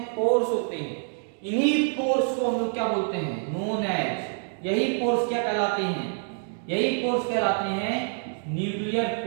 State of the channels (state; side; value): silent; left; 60 dB below the other